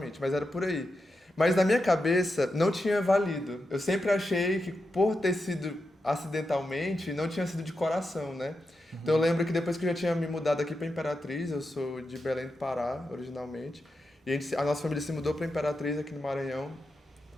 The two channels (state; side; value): normal; both; correlation 0.88